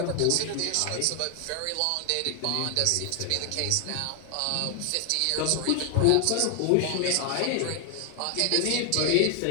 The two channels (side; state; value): both; different; correlation 0.00